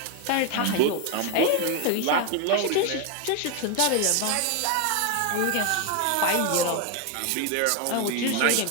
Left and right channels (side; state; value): both; different; correlation 0.01